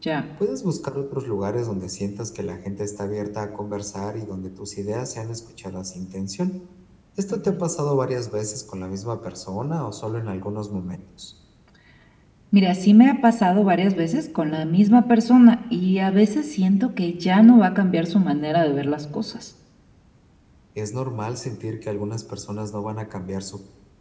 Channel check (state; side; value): identical; both; correlation 1.00